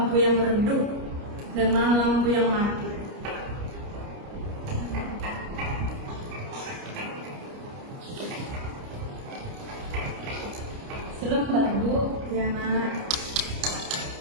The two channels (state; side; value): late; left; 29 ms